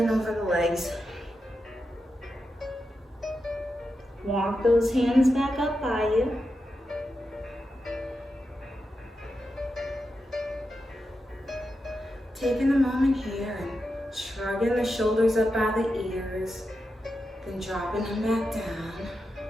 over the legs. Walk those hands back up by you. Taking a moment here and shrugging the shoulders up by the ears, then dropping them back down.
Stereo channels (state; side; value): normal; both; correlation 0.88